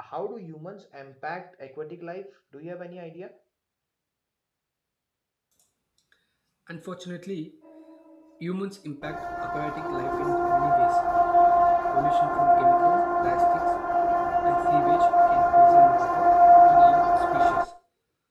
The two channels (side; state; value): both; identical; correlation 1.00